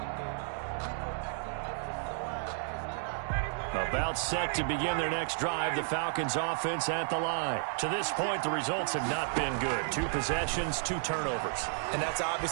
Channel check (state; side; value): silent; left; digital silence